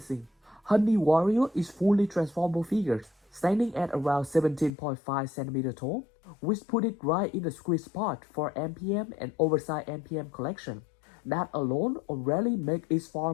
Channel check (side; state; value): right; drops out; at 4.7 s